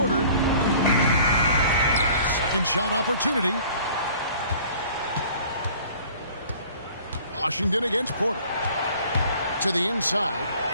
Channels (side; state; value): both; inverted; correlation -0.50